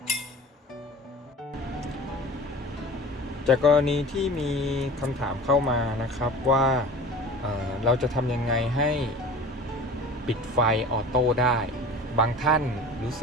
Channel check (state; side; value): normal; both; correlation 0.38